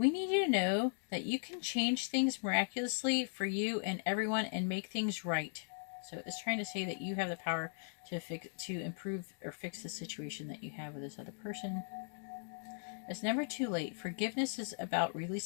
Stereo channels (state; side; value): silent; right; digital silence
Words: need you to know that you can change things miraculously for you and everyone and make things right. So it's trying to say that you have the power to improve or fix the situation that you have with this other person. It's never too late. Forgiveness is about